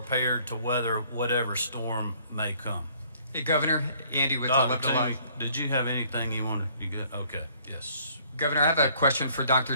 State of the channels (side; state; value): both; inverted; correlation -0.60